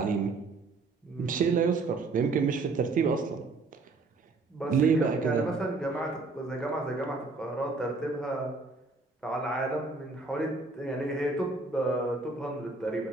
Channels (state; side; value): quieter; left; 3.7 dB